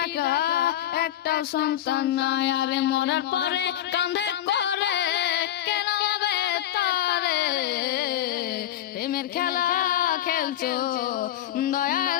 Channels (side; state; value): right; quieter; 12.5 dB